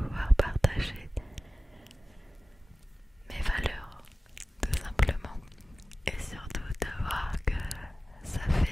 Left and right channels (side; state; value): both; normal; correlation 0.96